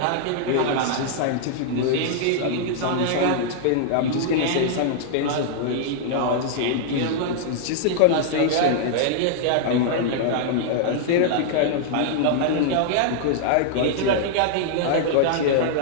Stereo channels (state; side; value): different; both; correlation -0.01